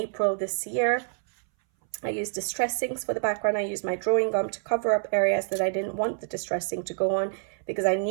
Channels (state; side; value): silent; left; 60 dB below the other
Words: this year. I used distress inks for the background. I used my drawing gum to cover up areas that I didn't want the distress ink to go on, because I